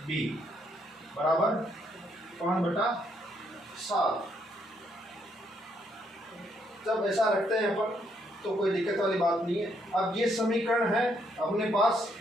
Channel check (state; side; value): normal; both; correlation 0.73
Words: बी बराबर 5/7। जब ऐसा रखते हैं अपन तो कोई दिक्कत वाली बात नहीं है। अब ये समीकरण है अपने पास,